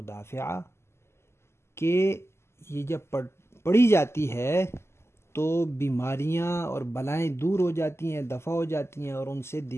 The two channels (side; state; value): right; late; 0.12 ms